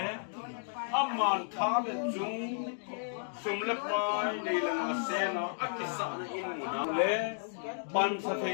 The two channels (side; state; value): right; silent; digital silence